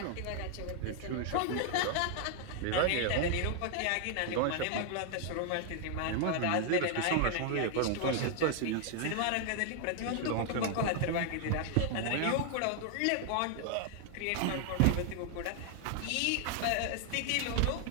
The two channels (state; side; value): different; both; correlation 0.00